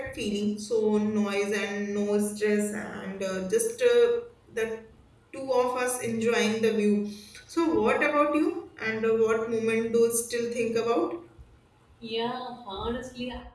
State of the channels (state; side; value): identical; both; correlation 1.00